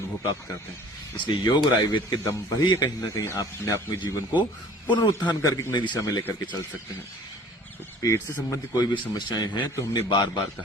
प्राप्त करते हैं। इसलिए योग और आयुर्वेद के दम पर ही कहीं ना कहीं आप अपने अपने जीवन को पुनरुत्थान करके एक नई दिशा में लेकर के चल सकते हैं। तो पेट से संबंधित कोई भी समस्याएं हैं तो हमने बार बार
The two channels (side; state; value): both; normal; correlation 0.49